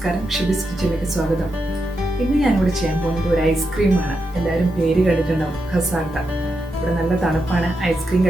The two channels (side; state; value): both; normal; correlation 0.86